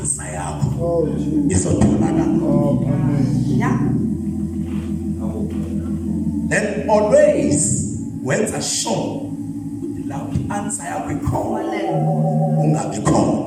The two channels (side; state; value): both; identical; correlation 1.00